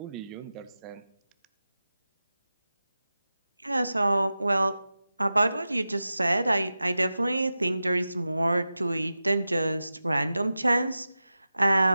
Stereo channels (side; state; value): both; inverted; correlation -0.94